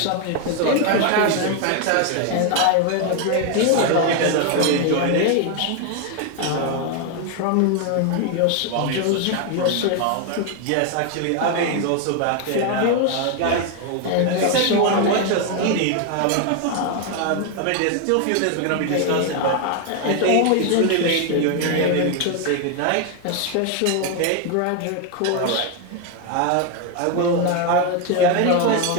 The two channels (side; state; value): both; different; correlation 0.01